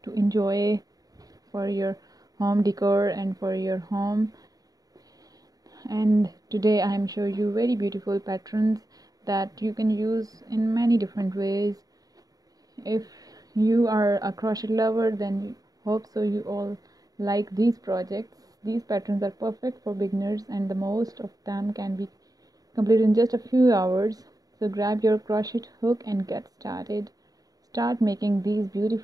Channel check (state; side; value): late; left; 0.18 ms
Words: to enjoy for your home decor and for your home. And today I am showing you very beautiful patterns that you can use in many different ways. If you are a crochet lover, then hope so you all like these projects. These patterns are perfect for beginners and the most of them can be completed in just a few hours. So grab your crochet hook and get started. Start making these